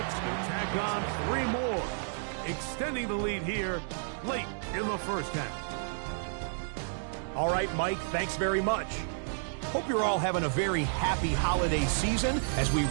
will tack on 3 more, extending the lead here late in the first half. All right, Mike, thanks very much. Hope you're all having a very happy holiday season as we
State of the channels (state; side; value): silent; left; digital silence